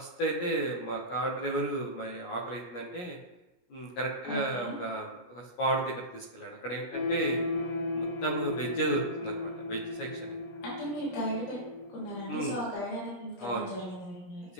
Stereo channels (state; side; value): late; right; 16 ms